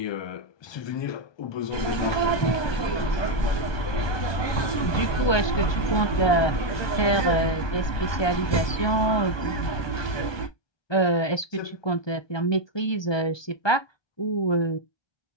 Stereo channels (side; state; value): right; late; 1.2 ms